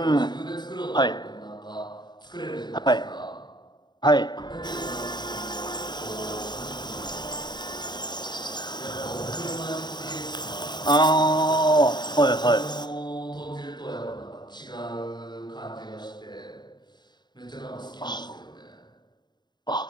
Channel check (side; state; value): right; late; 0.21 ms